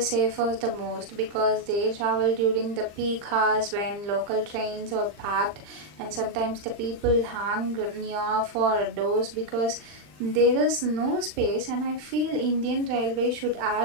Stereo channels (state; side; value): late; left; 39 ms